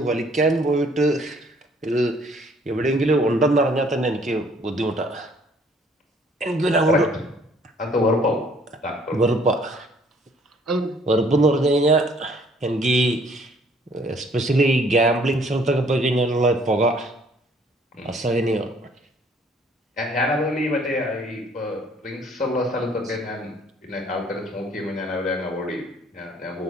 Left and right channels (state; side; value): normal; both; correlation 0.60